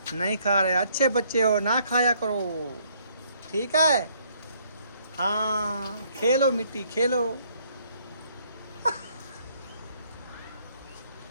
नहीं खा रहे, अच्छे बच्चे हो, ना खाया करो, ठीक है। हाँ खेलो मिट्टी खेलो।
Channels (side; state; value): both; inverted; correlation -0.66